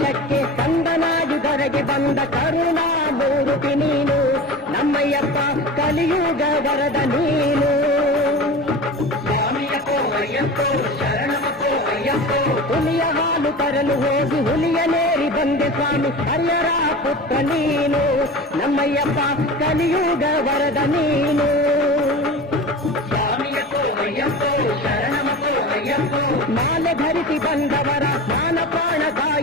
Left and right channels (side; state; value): both; normal; correlation 0.33